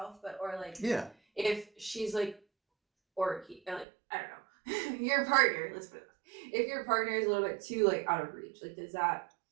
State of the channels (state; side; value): drops out; left; at 3.9 s